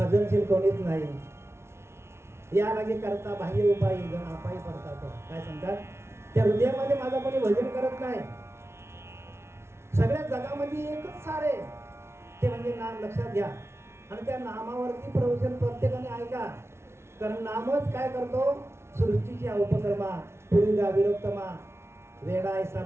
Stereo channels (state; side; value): late; left; 0.13 ms